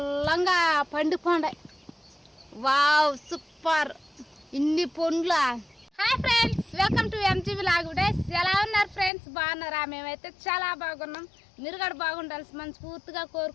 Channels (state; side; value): drops out; right; at 9.1 s